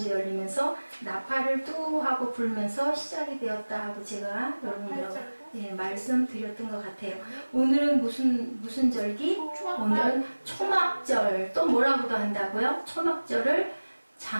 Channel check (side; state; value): both; inverted; correlation -1.00